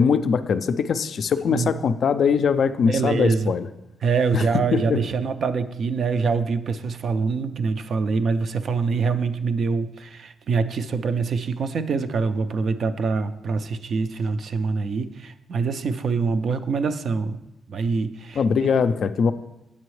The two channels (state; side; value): normal; both; correlation 0.75